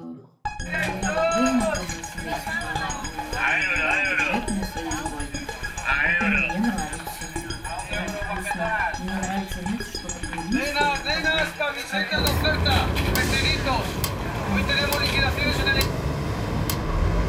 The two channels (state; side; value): identical; both; correlation 1.00